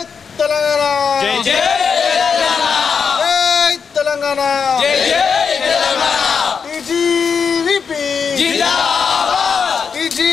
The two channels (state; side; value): quieter; right; 6.1 dB